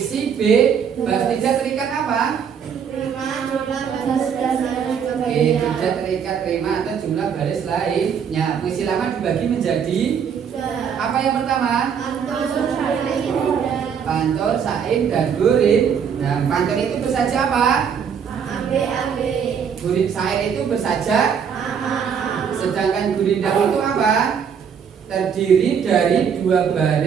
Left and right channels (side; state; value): left; quieter; 7.3 dB